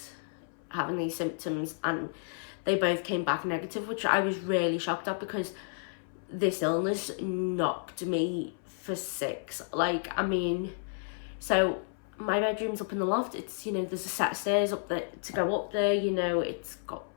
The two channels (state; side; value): silent; right; 57 dB below the other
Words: having these symptoms, and they both came back negative, which I was really shocked at, because this illness knocked me for 6. Like, I mean, so my bedroom's up in the loft. It's, you know, there's a set of stairs up there to go up there, you know, it's got,